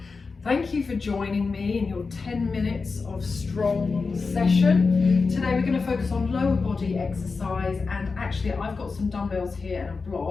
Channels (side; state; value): right; quieter; 4.5 dB